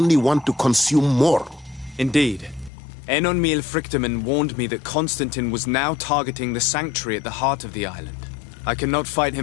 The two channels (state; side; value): drops out; right; at 2.7 s